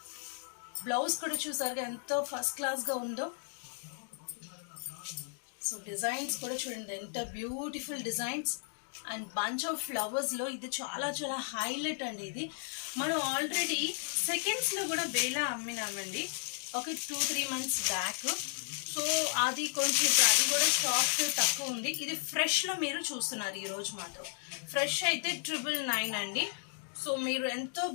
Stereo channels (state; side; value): silent; right; 55 dB below the other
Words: బ్లౌజ్ కూడా చూసారుగా ఎంతో ఫస్ట్ క్లాస్గా ఉందో. సో డిజైన్స్ కూడా చూడండి ఎంత beautiful designs and bunch of ఫ్లవర్స్లో ఇది చాలా చాలా హైలైట్ అండి. ఇది మనం ఆల్రెడీ సెకండ్స్లో కూడా బేలా అమ్మినామండి ఒక 2-3 months బ్యాక్. సో అది కొంచెం అది కూడా స్టాక్ తక్కువ ఉంది. ఇది ఫ్రెష్లో మీరు చూస్తున్నారు ఈరోజు మాత్రం. ఫ్రెష్ అయితే 999 అండి. సో మీరు ఎంతో